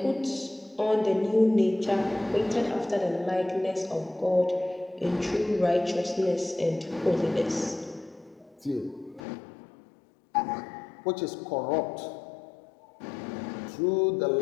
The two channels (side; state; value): right; drops out; at 9.2 s